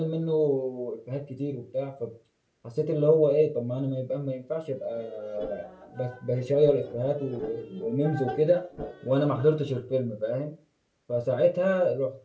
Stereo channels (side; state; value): both; identical; correlation 1.00